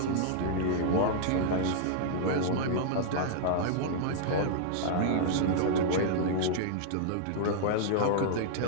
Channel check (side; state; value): both; different; correlation -0.01